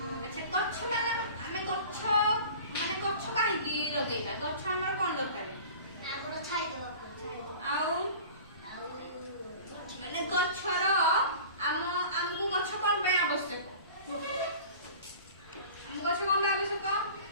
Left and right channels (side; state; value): both; inverted; correlation -0.41